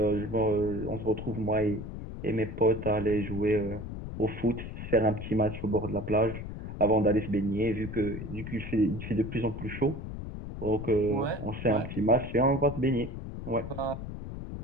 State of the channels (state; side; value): noise; left; rumble, 8 dB below the sound